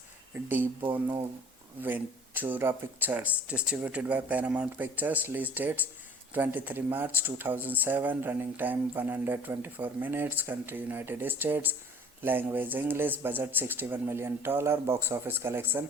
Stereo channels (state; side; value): normal; both; correlation 0.49